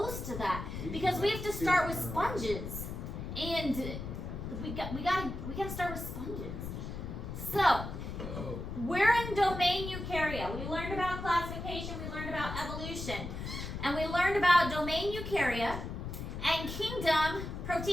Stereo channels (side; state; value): left; noise; rumble, 7 dB below the sound